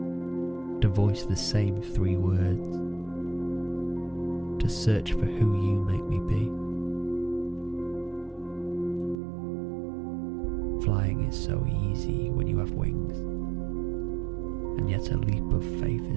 to voice the same 3 words, to search for who you make me be. Flying is so easy when you have wings, and yet a leap of faith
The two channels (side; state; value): left; drops out; at 9.2 s